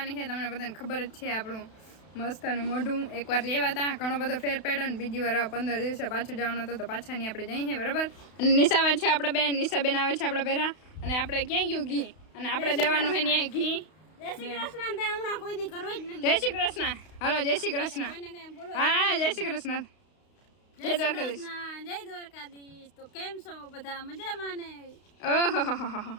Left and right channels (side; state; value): right; late; 32 ms